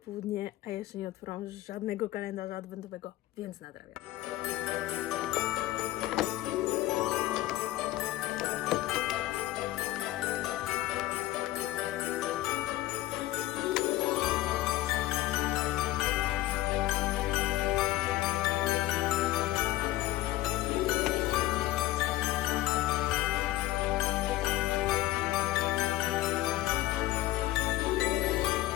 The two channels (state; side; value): quieter; right; 16.0 dB